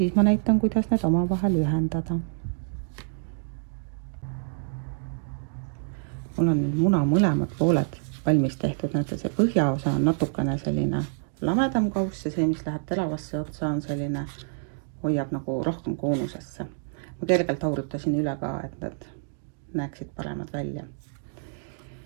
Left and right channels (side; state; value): left; silent; digital silence